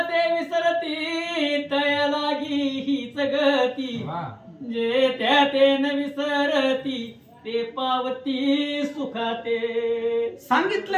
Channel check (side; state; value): both; identical; correlation 1.00